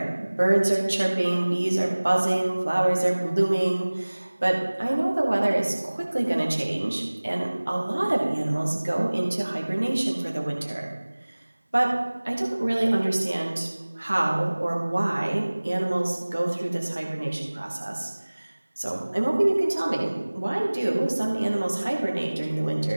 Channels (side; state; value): both; inverted; correlation -1.00